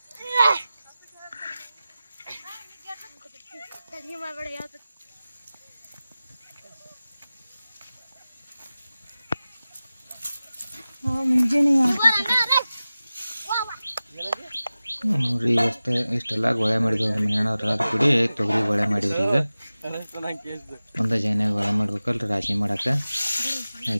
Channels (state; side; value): inverted; both; correlation -0.96